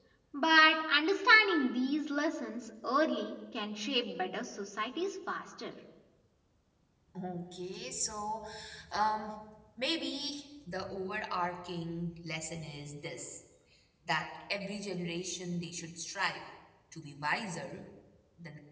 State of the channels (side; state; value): both; identical; correlation 1.00